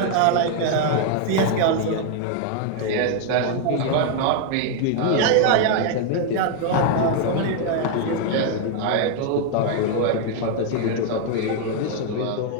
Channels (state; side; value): different; both; correlation 0.00